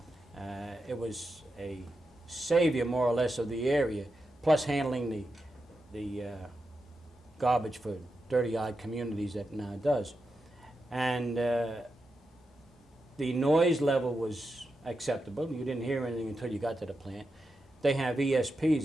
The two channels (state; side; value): normal; both; correlation 0.88